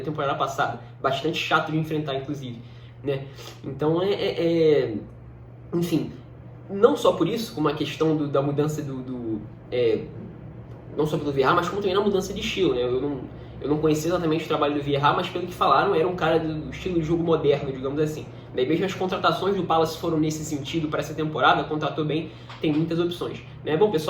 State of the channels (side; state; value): both; identical; correlation 1.00